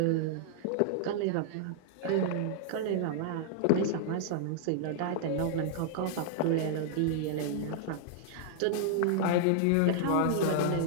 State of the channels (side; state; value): both; different; correlation -0.01